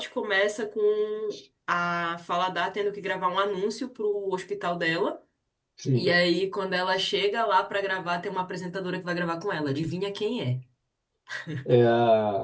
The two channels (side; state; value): both; identical; correlation 1.00